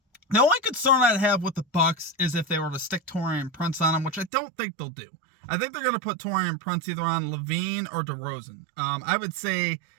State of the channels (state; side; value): drops out; left; at 4.3 s